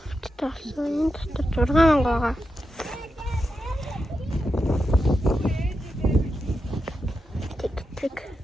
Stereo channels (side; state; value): both; normal; correlation 0.88